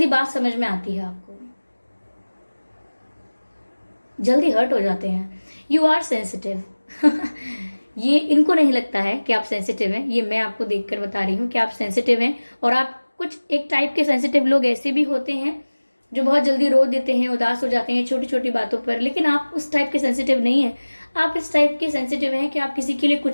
बात समझ में आती है आपको, जल्दी हर्ट हो जाते हैं। You are sensitive. ये इनको नहीं लगता है कि आप सेंसिटिव हैं, ये मैं आपको देखकर बता रही हूँ कि आप सेंसिटिव हैं। और आप कुछ एक टाइप के सेंसिटिव लोग ऐसे भी होते हैं जो बहुत जल्दी रो देते हैं, उदास हो जाते हैं छोटी छोटी बातों पर, लेकिन आप उस टाइप के सेंसिटिव नहीं है। आप इस टाइप के सेंसिटिव हैं कि आप किसी के लिए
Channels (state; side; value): inverted; both; correlation -1.00